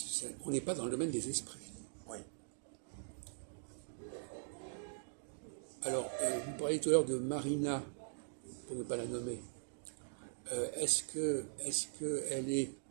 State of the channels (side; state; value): left; silent; digital silence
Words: on n'est pas dans le domaine des esprits. Oui. Alors, vous parliez tout à l'heure de Marina, pour ne pas la nommer. Est-ce qu'elle est